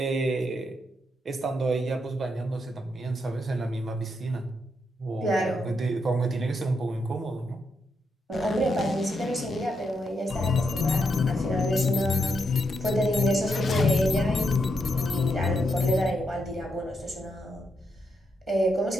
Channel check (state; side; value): normal; both; correlation 0.81